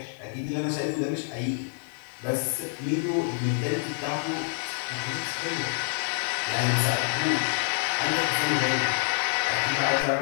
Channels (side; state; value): right; silent; 60 dB below the other